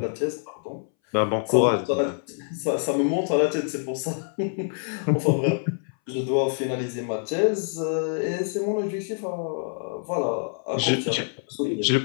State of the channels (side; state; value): right; silent; 61 dB below the other